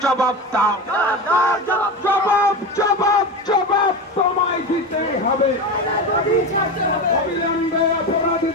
জবাব দাও। জবাব জবাব জবাব তোমায় দিতেই হবে। অবিলম্বে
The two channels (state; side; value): normal; both; correlation 0.22